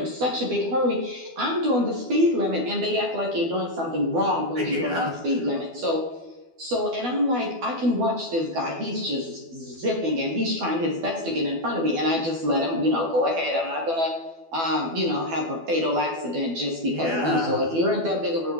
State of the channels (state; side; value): late; left; 12 ms